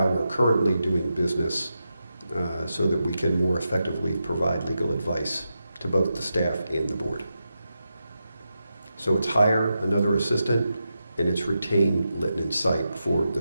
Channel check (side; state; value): both; inverted; correlation -0.88